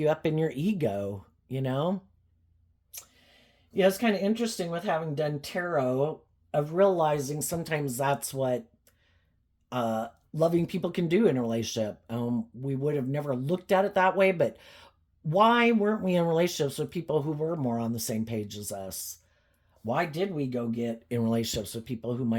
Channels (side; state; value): both; identical; correlation 1.00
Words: up in your ego? Yeah, it's kind of interesting with having done tarot of realizing sometimes that's what loving people can do in a relationship. We would have never looked at it that way, but why weren't we in relationships with people who were more on the same page as us? Why did we go get in relationships with people who